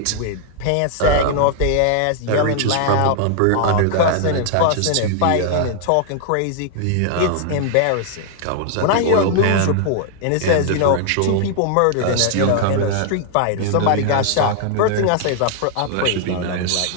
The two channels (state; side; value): different; both; correlation -0.01